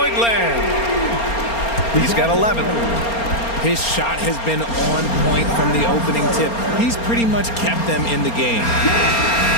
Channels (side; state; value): right; late; 4.3 ms